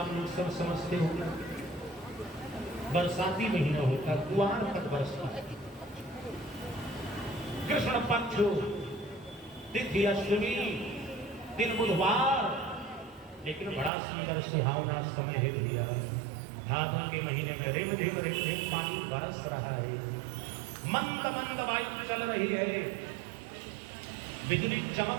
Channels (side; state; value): left; drops out; at 13.9 s